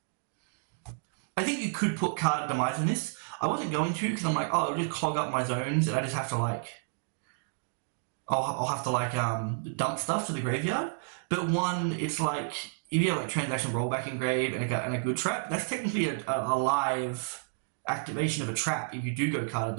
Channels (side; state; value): left; silent; digital silence